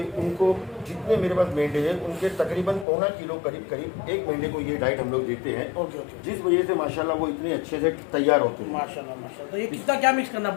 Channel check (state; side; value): drops out; right; at 2.9 s